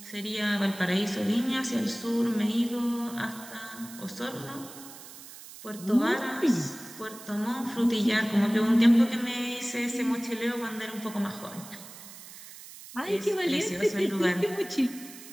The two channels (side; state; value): right; noise; hiss, 16 dB below the sound